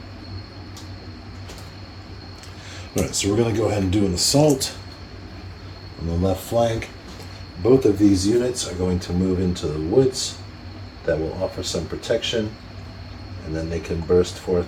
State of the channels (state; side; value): identical; both; correlation 1.00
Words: Alright, so we're going to go ahead and do an assault on the left flank. Both of these units are going to move into the woods. That will offer some protection, and then they can burst forth